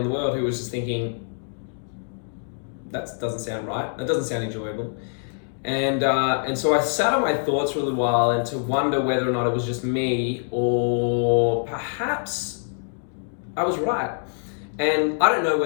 the world who was just thinking, that doesn't sound right. That doesn't sound enjoyable. And so I sat on my thoughts for a little while and to wonder whether or not it was just me, or perhaps I was right. And I don't know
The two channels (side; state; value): right; silent; digital silence